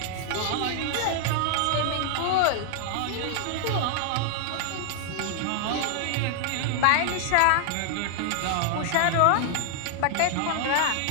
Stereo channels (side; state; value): both; different; correlation -0.01